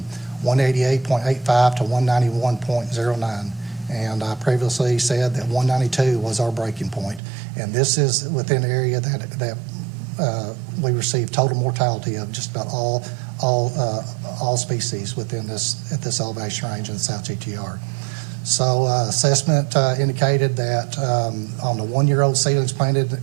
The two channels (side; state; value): left; drops out; at 7.2 s